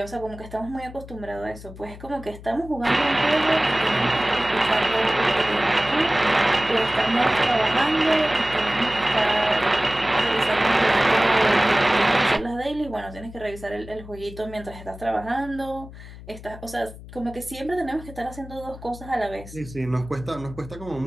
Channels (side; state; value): left; noise; hum, 16 dB below the sound